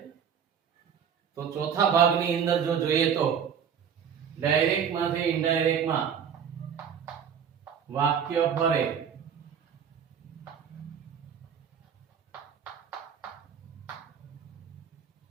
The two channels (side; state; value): left; quieter; 7.7 dB